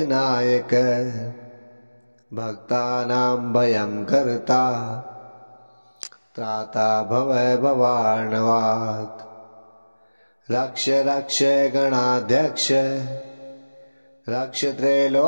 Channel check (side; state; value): both; inverted; correlation -1.00